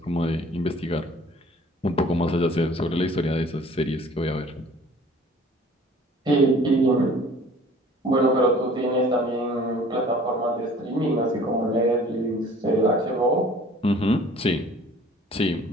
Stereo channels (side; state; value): both; normal; correlation 0.51